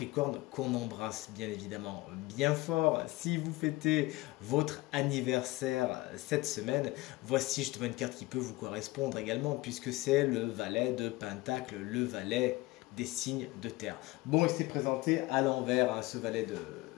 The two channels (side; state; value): right; quieter; 20.1 dB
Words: qu'on embrasse bien évidemment bien fort, si vous fêtez votre anniversaire cette semaine, voici justement une carte qui peut vous correspondre également puisque c'est le valet de Pentacle, le valet des signes de terre. Bon, il s'est présenté à l'envers, ce valet